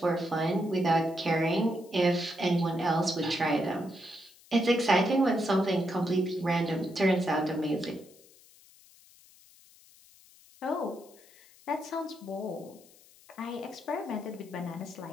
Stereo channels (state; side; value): noise; left; hiss, 26 dB below the sound